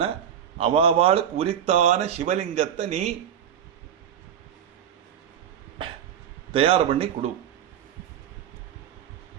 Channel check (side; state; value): left; quieter; 9.3 dB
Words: அவாவாளுக்கு உரித்தான சிவலிங்கத்தை நீ தயார் பண்ணி கொடு.